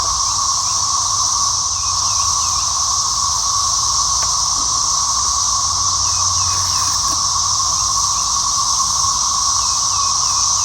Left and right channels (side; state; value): both; identical; correlation 1.00